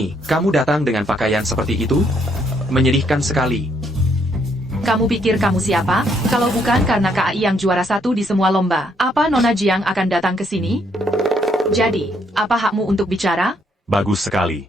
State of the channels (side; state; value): both; normal; correlation 0.71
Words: kamu datang dengan pakaian seperti itu? Menyedihkan sekali. Kamu pikir kamu siapa? Kalau bukan karena KAI yang juara 1 di semua lomba, apa Nona Jiang akan datang ke sini? Jadi, apa hakmu untuk bicara? Bagus sekali.